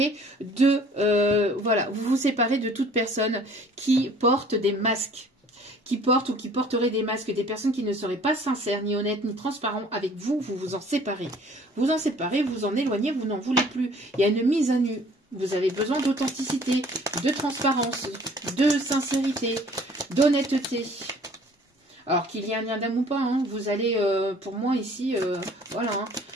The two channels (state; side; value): normal; both; correlation 0.53